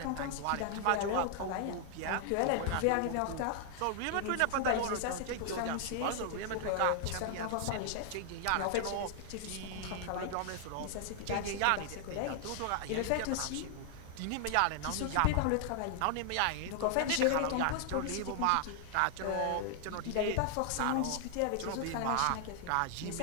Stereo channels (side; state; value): both; different; correlation 0.00